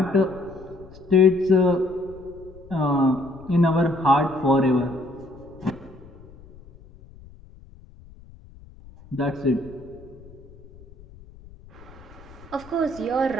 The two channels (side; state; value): left; noise; rumble, 21 dB below the sound